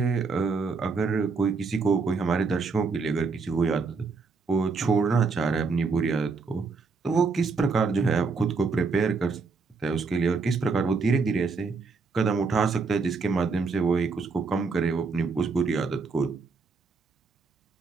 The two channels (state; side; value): quieter; left; 4.5 dB